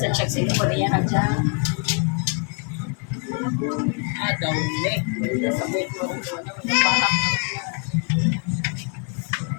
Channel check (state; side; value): quieter; right; 38.7 dB